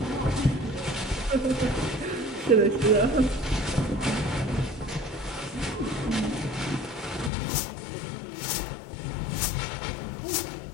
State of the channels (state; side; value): drops out; right; at 7.3 s